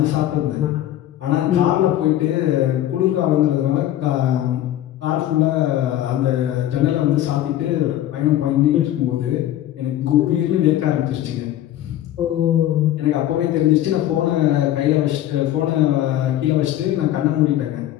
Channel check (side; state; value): right; quieter; 13.0 dB